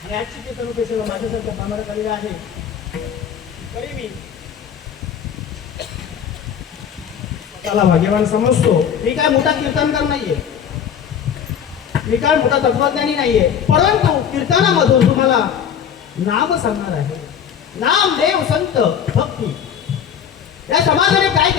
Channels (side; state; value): right; quieter; 8.3 dB